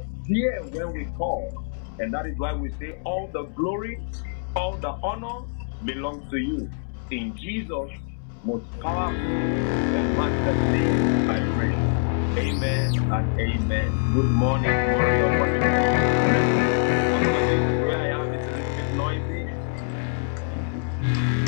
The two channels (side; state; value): right; silent; 62 dB below the other